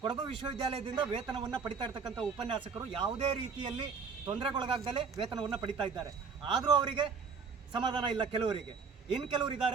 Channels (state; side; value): quieter; left; 5.4 dB